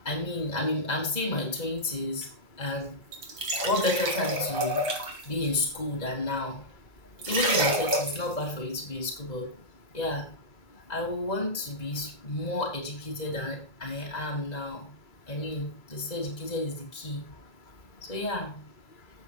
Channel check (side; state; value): right; late; 2.0 ms